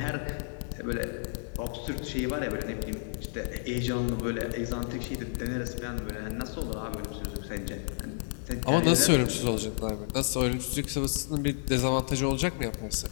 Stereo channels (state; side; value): silent; right; 57 dB below the other